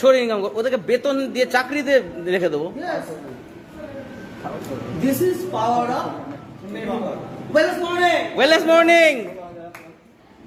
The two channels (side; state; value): both; identical; correlation 1.00